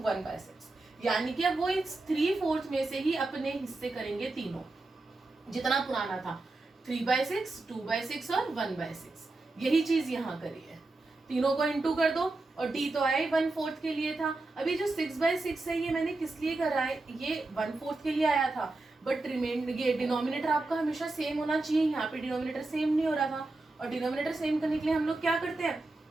यानी कि अब वो इस 3/4 में से ही अपने हिस्से करेंगे तीनों, जितना पुराना था 3/6, 2/6 और 1/6। यही चीज यहाँ करी है, तीनों को इंटू कर दो, और D तो आया ही 1/4 के लिए था। अभी जो 6/6 है ये मैंने किस लिए करा है, ये 1/4 के लिए आया था, बट ये डिनोमिनेटर आपका हमेशा सेम होना चाहिए। यहाँ पे डिनोमिनेटर सेम नहीं हो रहा था, और डिनोमिनेटर सेम करने के लिए हम लोग क्या करते हैं,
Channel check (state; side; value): quieter; left; 3.1 dB